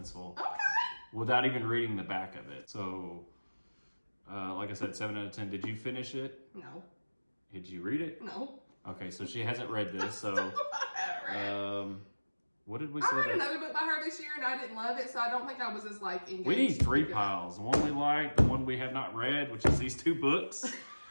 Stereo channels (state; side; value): inverted; both; correlation -1.00